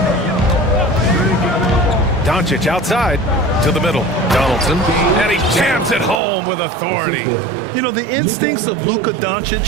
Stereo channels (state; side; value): drops out; left; at 6.2 s